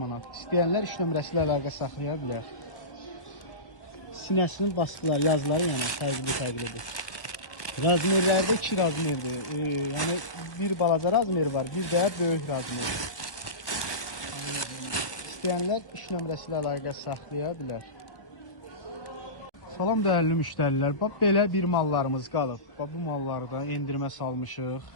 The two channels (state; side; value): late; right; 1.1 ms